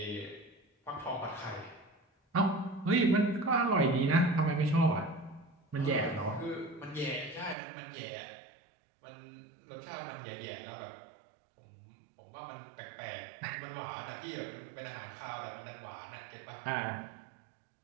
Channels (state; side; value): drops out; left; at 7.6 s